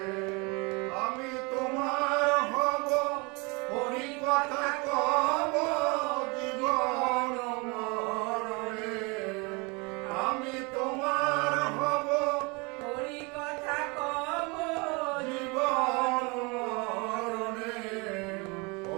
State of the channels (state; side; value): quieter; left; 28.7 dB